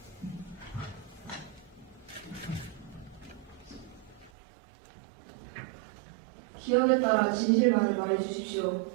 기억에 따라 진실만을 말해주십시오.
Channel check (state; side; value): drops out; left; at 4.3 s